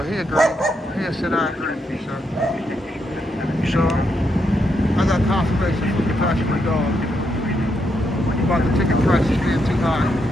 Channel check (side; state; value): both; normal; correlation 0.80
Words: he agreed. He said, I agree with you, sir. So, I got confirmation from the passenger dog about the ticket prices being too high.